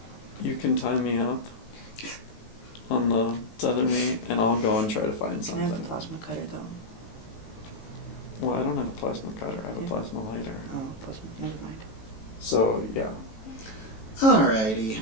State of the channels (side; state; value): right; late; 18 ms